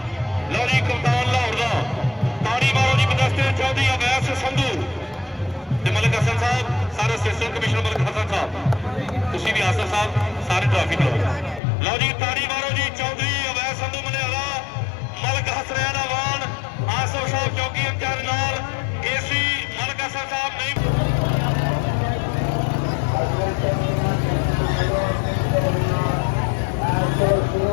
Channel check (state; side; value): drops out; right; at 11.6 s